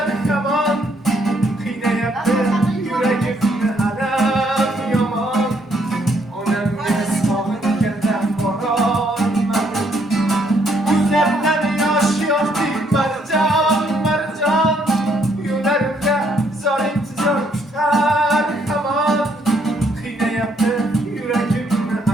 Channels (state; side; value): normal; both; correlation 0.70